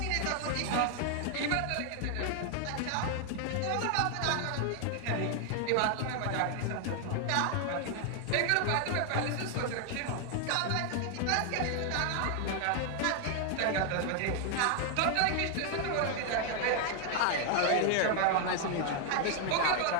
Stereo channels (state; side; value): different; both; correlation 0.00